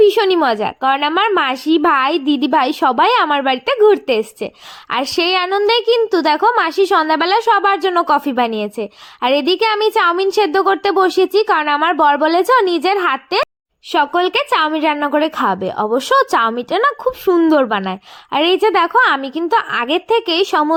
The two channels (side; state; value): both; identical; correlation 1.00